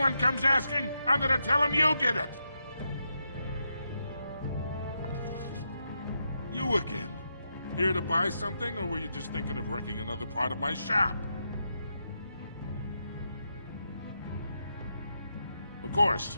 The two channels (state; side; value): inverted; both; correlation -0.83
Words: comes asking, I'm gonna tell them you did it. You again. Here to buy something, or were you just thinking of wrecking another part of my shop? Of